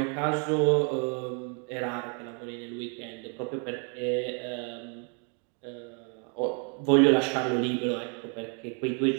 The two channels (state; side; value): quieter; left; 38.9 dB